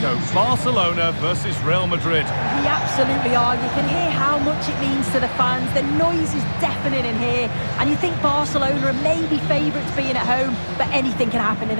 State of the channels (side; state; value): both; inverted; correlation -1.00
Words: Barcelona versus Real Madrid. We absolutely are. You can hear how much it means to the fans. The noise is deafening in here, and you think Barcelona are maybe favourites being at home, but anything can happen in